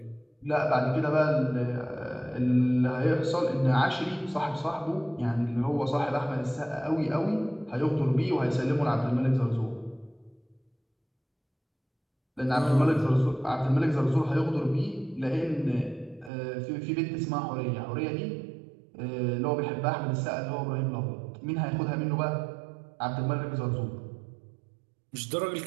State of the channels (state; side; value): drops out; left; at 16.3 s